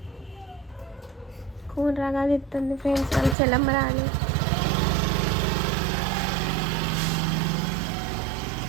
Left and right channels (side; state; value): left; drops out; at 3.4 s